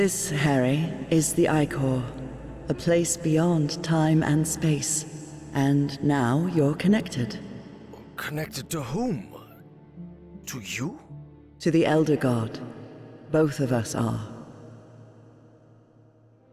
Harry, is the Icor, a place beyond time and space. And now you're connected. Connected to whom? To you? To the Elder God. Both of us are.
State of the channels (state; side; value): identical; both; correlation 1.00